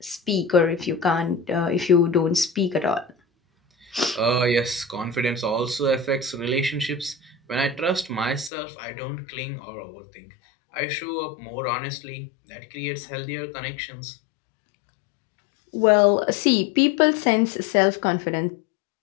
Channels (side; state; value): right; drops out; at 8.5 s